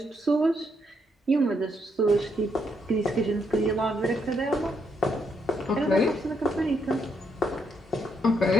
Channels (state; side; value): normal; both; correlation 0.76